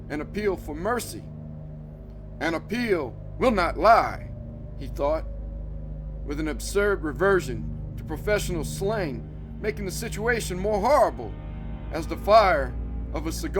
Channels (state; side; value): identical; both; correlation 1.00